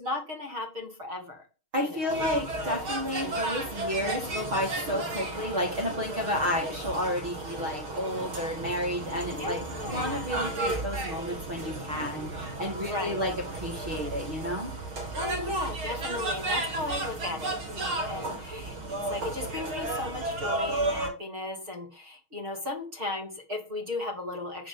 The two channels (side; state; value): left; late; 6.4 ms